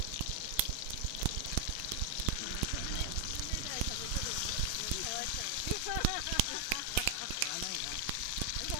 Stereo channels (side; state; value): both; different; correlation 0.00